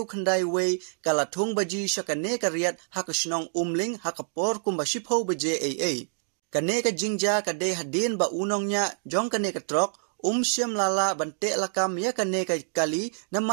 khandai way, ka latung baji syakane ka riat, haka shnong umling, haka por kumba shipho baje AA. Kane ka jingja ka de hadin ba unongnya, jong kane ka trok, Syam lala bante lakam ya kane ka kali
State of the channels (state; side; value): silent; left; 60 dB below the other